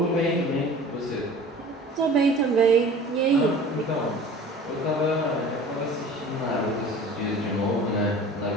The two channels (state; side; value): normal; both; correlation 0.43